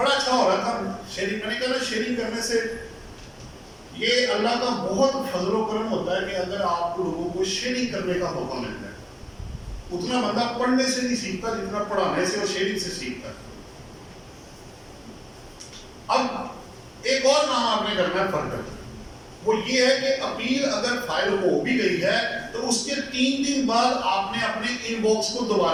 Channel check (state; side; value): identical; both; correlation 1.00